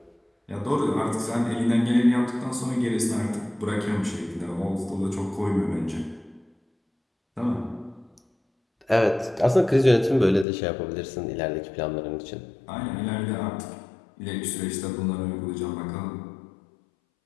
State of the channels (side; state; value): right; drops out; at 10.5 s